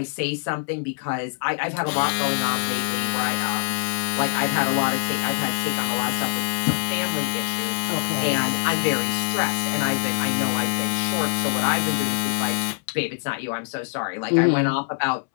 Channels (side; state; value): right; silent; 63 dB below the other